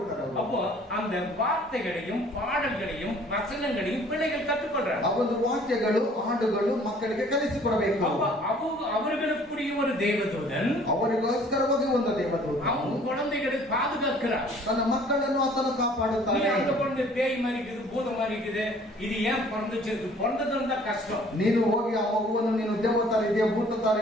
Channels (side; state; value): both; normal; correlation 0.54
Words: அப்போ அந்த வார்த்தைகளையும் பாடல்களையும் வசனங்களையும் பிள்ளைகள் கற்றுக்கொள்றாங்க. ಆ ಒಂದು ವಾಕ್ಯಗಳು ಹಾಡುಗಳು ಮಕ್ಕಳಿಗೆ ಕಲಿಸಿಕೊಡಬೇಕು. அவர்களுக்குரிய ஒரு தேவதூதன் ಅವರಿಗೋಸ್ಕರವಾಗಿ ಒಂದು ದೇವದೂತ அவங்க குழந்தைகளை பாதுகாக்கிறார். ತನ್ನ ಮಕ್ಕಳನ್ನು ಆತನು ಕಾಪಾಡುತ್ತಾನೆ. அந்த குழந்தை பேய் மாதிரி இருக்குது, பூதம் மாதிரி இருக்குது, இது ஏன் பிறந்துச்சு? பிறந்ததும் தான் கஷ்டம். ನೀನು ಹೋಗಿ ಆ ಮಗುವನ್ನು ನೀನು ದೇವತಾರ ಇದೆಯಾ ಭೂತ ತರ